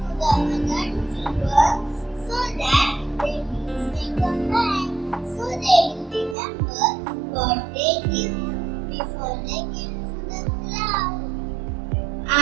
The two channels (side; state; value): left; drops out; at 6.4 s